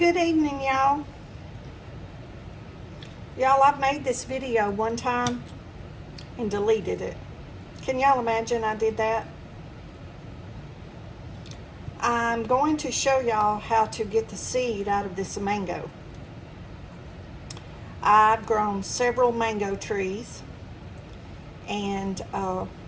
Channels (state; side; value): identical; both; correlation 1.00